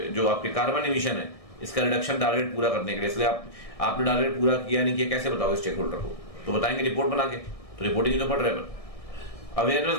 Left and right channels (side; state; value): right; late; 1.6 ms